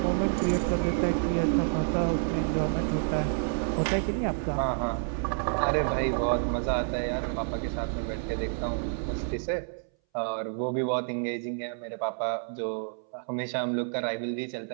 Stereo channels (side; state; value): left; silent; 59 dB below the other